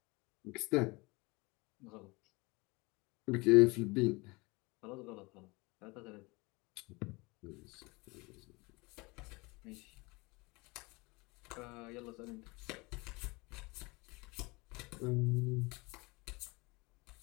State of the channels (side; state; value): right; quieter; 25.4 dB